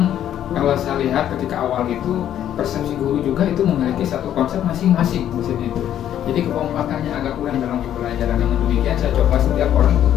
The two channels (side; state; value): right; quieter; 10.8 dB